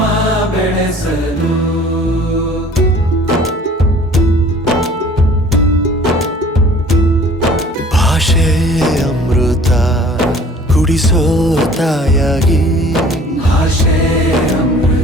ಬೆಳೆಸಲು ಭಾಷೆ ಅಮೃತ ಕುಡಿಸೋ ತಾಯಾಗಿ ಭಾಷೆ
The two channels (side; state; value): both; normal; correlation 0.50